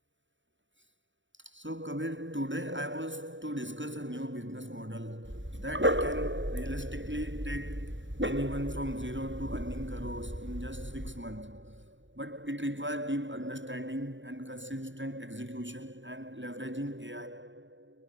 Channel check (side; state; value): left; late; 0.55 ms